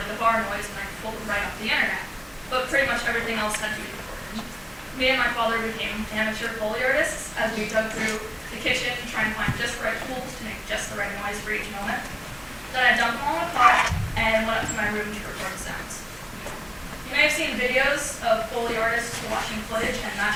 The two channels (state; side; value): identical; both; correlation 1.00